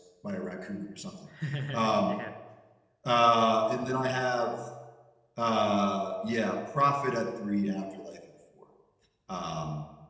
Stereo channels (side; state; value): both; identical; correlation 1.00